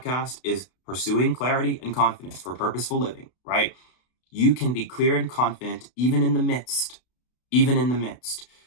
is pursuing clarity and confidence for purposeful living, right? You can be clear and confident even in the midst, even in the midst.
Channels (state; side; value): late; right; 32 ms